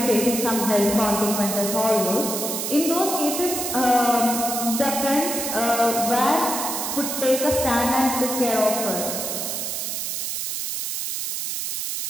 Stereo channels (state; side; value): noise; right; hiss, 3 dB below the sound